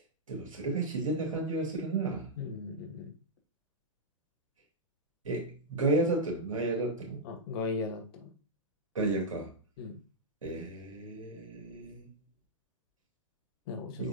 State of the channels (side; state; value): both; normal; correlation -0.07